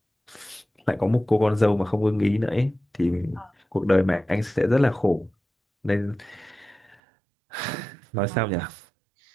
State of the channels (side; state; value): left; drops out; at 7.0 s